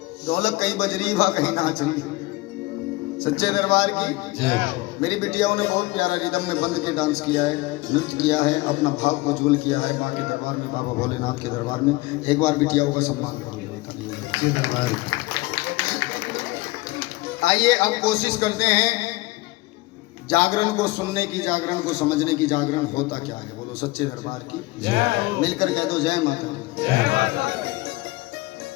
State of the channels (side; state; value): right; quieter; 21.3 dB